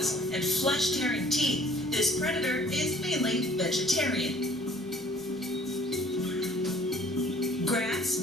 and flesh-tearing teeth, this predator is mainly vegetarian. Grass,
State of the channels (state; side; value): normal; both; correlation 0.56